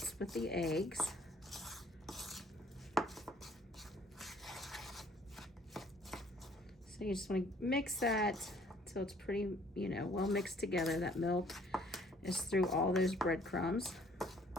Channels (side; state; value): both; normal; correlation 0.59